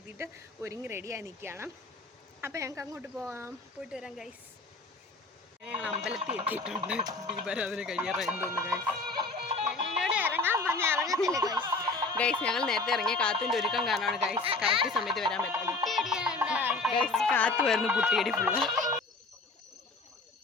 ഒരുങ്ങി റെഡിയായി നിൽക്കുകയാണ്. അപ്പോൾ ഞങ്ങൾക്ക് അങ്ങോട്ട് പോയിട്ട് വരാം ഗൈസ്. ഞങ്ങൾ അമ്പലത്തിൽ എത്തിയിട്ടുണ്ട്. ദീപാരാധന കഴിയാറായെന്ന് ഗൈസ്. ഗൈസ്, ഞങ്ങൾ നേരത്തെ ഇറങ്ങിയ കാത്തിൻ്റെ ഒരുക്കം കാരണമാണ് ഗൈസ് കറക്റ്റ് സമയത്ത് വരാൻ പറ്റുന്നത്. ഗൈസ്, കാത്തു വരുന്നു കുട്ടിയടി ഫുള്ള്.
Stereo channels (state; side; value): quieter; right; 3.5 dB